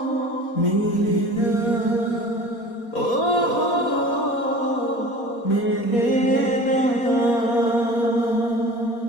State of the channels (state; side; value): late; right; 4.2 ms